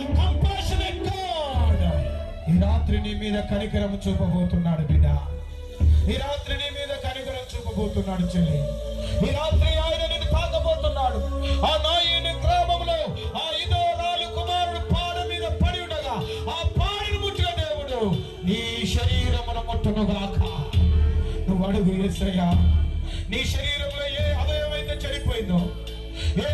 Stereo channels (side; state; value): both; identical; correlation 1.00